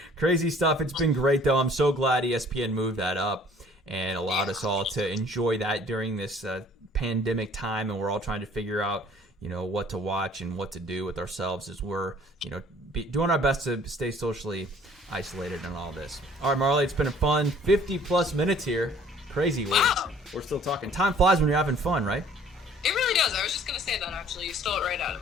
Crazy stuff. It's been great, though. I'm so glad ESPN moved that up and allowed us all to enjoy that during this pandemic time, and we're all trying to figure out, what to watch and what to do with ourselves as we're, doing our best to stay socially isolated and all this. All right, Marlee, it's been a fun 50-plus minutes here. Crazy. Wow. We're still talking. Time flies when you're having fun, right? It really does. I was just going to say that, actually. You stole it right out of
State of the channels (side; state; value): both; normal; correlation 0.55